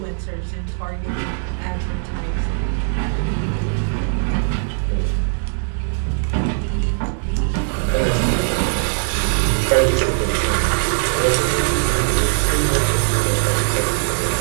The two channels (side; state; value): left; silent; digital silence